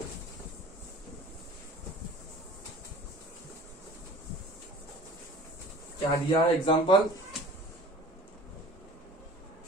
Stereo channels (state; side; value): normal; both; correlation 0.44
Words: क्या दिया है एग्जांपल,